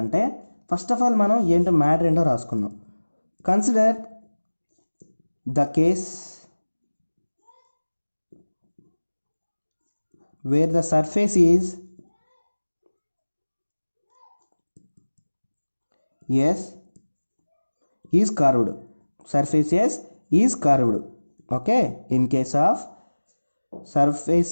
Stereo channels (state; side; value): inverted; both; correlation -1.00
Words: ఫస్ట్ ఆఫ్ ఆల్ మనం ఏంటో మ్యాటర్ ఏంటో రాసుకుందాం। Consider the case where the surface is S is curved. Surface S is curved. Okay, in case of surface